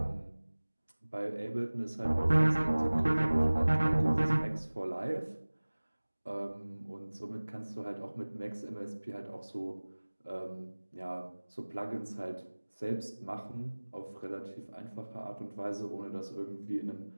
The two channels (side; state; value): both; inverted; correlation -1.00